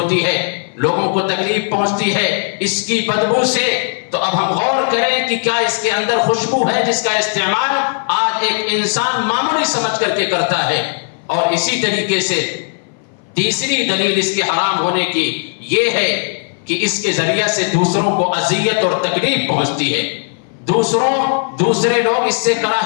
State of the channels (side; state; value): right; silent; 61 dB below the other